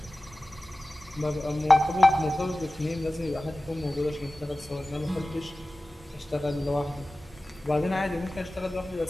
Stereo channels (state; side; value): normal; both; correlation 0.96